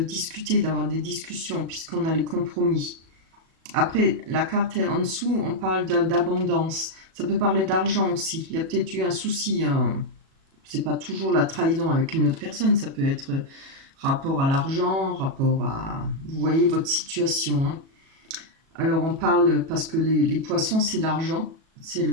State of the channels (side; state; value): left; late; 37 ms